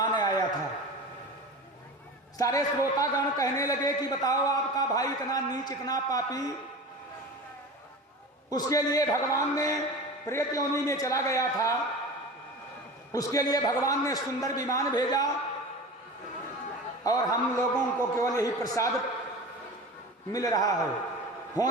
आया था। सारे श्रोतागण कहने लगे कि बताओ आपका भाई इतना नीच, इतना पापी, उसके लिए भगवान ने प्रेत योनि में चला गया था, उसके लिए भगवान ने सुंदर विमान भेजा और हम लोगों को केवल यही प्रसाद मिल रहा है।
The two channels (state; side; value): normal; both; correlation 0.33